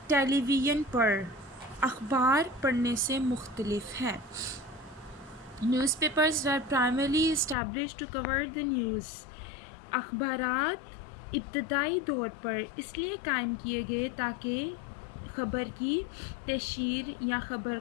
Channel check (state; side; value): drops out; right; at 7.6 s